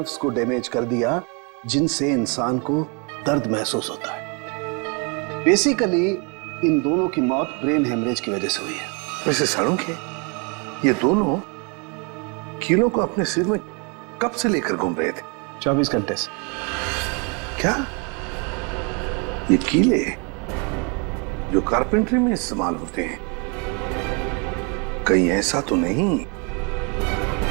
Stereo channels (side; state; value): left; quieter; 33.6 dB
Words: को डैमेज कर दिया जिनसे इंसान को दर्द महसूस होता है। बेसिकली इन दोनों की मौत ब्रेन हेमरेज की वजह से हुई है। वैसे सालुंके, ये दोनों कीलों को अपने सिर में कब से लेकर घूम रहे थे? 24 घंटे से। क्या ये कीले जो कारपेंट्री में इस्तेमाल होते हैं, कहीं ऐसा तो नहीं